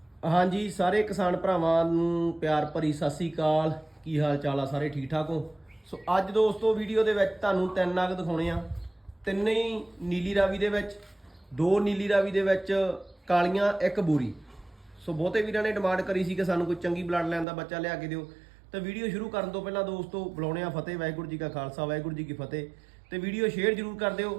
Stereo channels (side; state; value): left; drops out; at 17.4 s